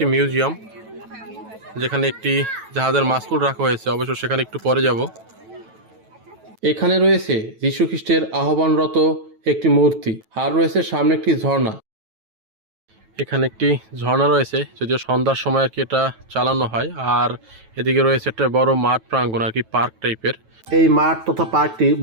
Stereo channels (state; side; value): late; left; 9.1 ms